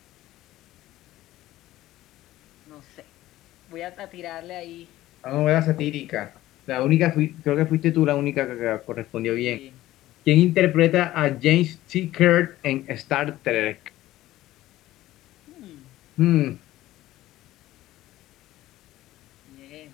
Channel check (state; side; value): quieter; right; 15.5 dB